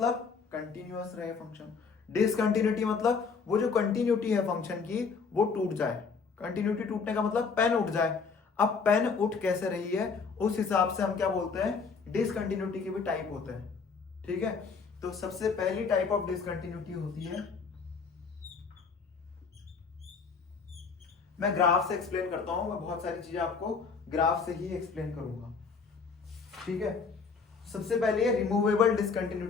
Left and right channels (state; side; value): quieter; right; 5.2 dB